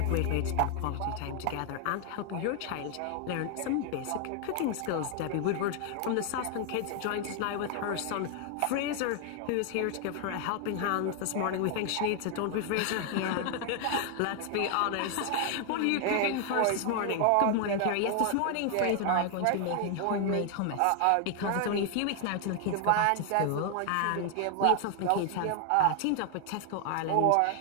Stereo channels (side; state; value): both; different; correlation 0.00